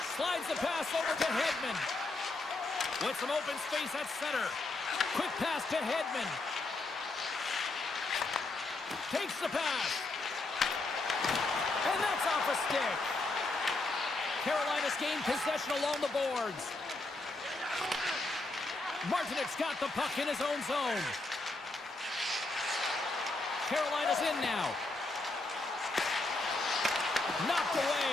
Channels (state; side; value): quieter; right; 3.1 dB